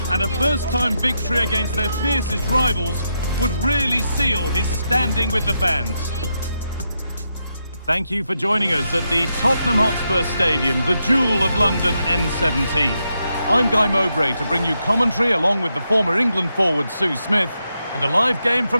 and a first-time victory against their fiercest rivals would really seal his standing with the fans. Thank you for joining us at the Tottenham Hotspur Stadium, the jewel of London N17. I'm Guy Mowbray to bring you commentary along with the former England forward Sue Smith, and a live game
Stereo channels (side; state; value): both; inverted; correlation -0.83